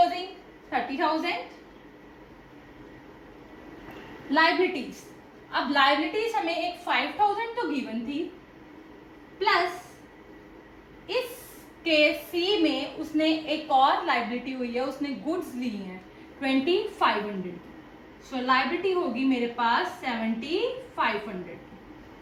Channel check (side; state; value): both; identical; correlation 1.00